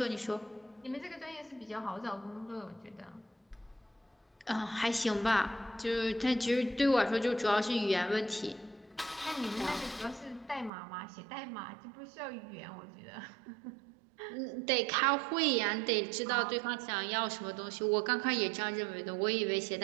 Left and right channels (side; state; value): left; drops out; at 10.7 s